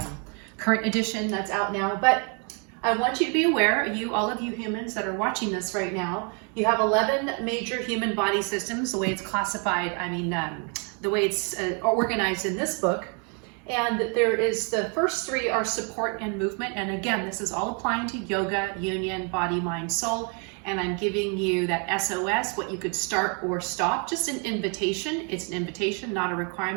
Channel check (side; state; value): left; quieter; 37.2 dB